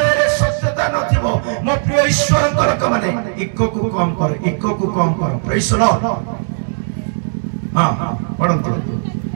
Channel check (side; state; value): left; silent; digital silence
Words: सत्यता नथिबो। मो प्रिय ईश्वर लोक माने इको को कम कर प्रेज द लॉर्ड। हां पढ़ंतु